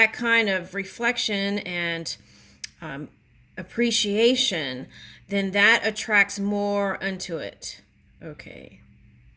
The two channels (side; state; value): both; identical; correlation 1.00